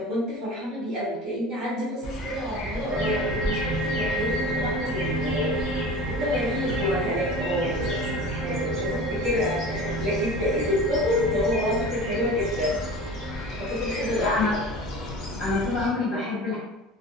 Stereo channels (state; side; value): normal; both; correlation 0.37